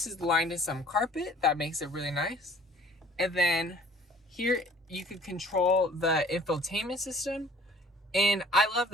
is lined in some carpet. That makes it really nice. And then here you can control the infotainment system, and I love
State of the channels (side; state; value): both; normal; correlation 0.53